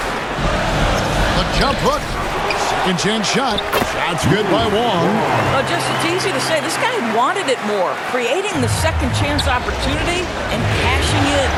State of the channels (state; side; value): identical; both; correlation 1.00